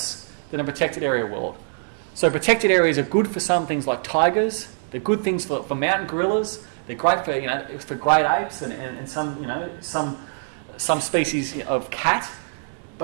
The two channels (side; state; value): left; silent; digital silence